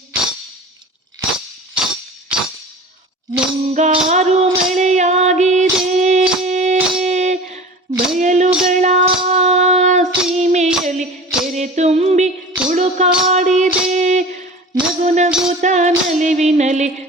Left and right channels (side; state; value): both; normal; correlation 0.37